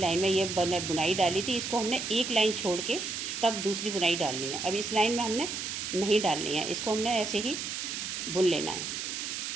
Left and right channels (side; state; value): right; noise; hiss, 4 dB below the sound